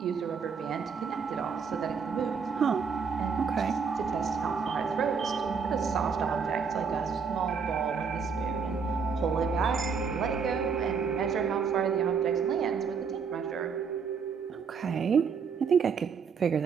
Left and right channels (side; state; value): left; quieter; 5.9 dB